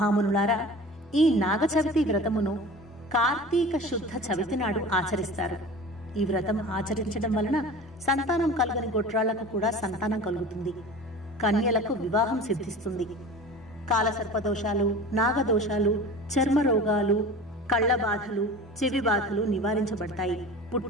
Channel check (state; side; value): normal; both; correlation 0.37